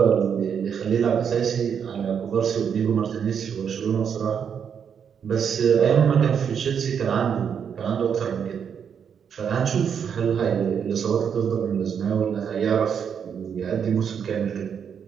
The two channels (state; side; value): quieter; left; 7.5 dB